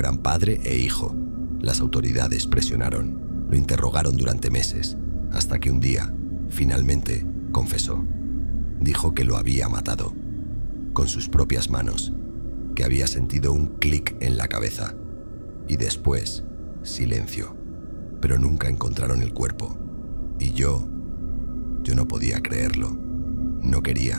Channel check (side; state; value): both; inverted; correlation -1.00